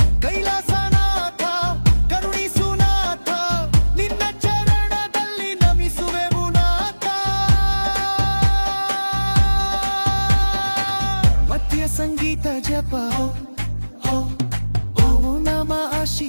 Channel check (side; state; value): both; inverted; correlation -1.00